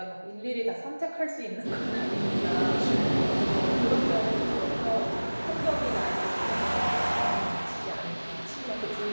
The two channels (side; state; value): both; inverted; correlation -1.00